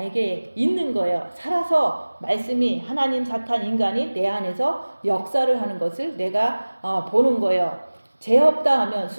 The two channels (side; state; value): both; inverted; correlation -1.00